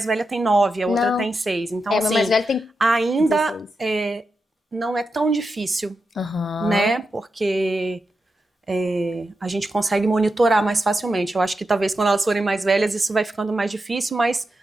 velha tem 9, a outra Não. tem 6. Então, meu assim, mais velho tem ainda 16. Não é tão difícil, né? Porque a gente consegue monitorar mais facilmente. Eu acho que talvez quando elas forem mais velhas isso vai ficando mais difícil, mas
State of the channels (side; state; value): both; normal; correlation 0.88